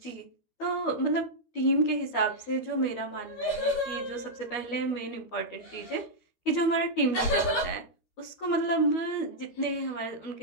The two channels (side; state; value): right; late; 12 ms